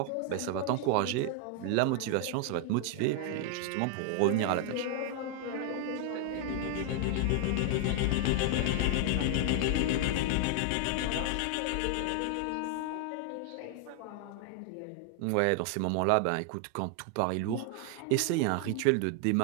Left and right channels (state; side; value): different; both; correlation 0.00